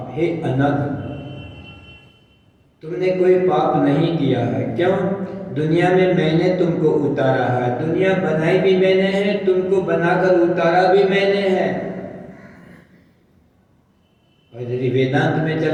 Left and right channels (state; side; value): identical; both; correlation 1.00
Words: हे अनघ, तुमने कोई पाप नहीं किया है। क्यों? दुनिया में मैंने तुमको उतारा है, दुनिया बनाई भी मैंने है, तुमको बनाकर उतारा भी मैंने है। और यदि वेदांत में